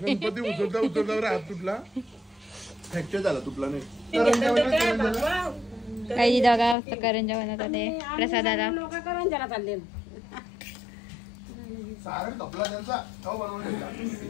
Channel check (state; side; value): drops out; right; at 6.8 s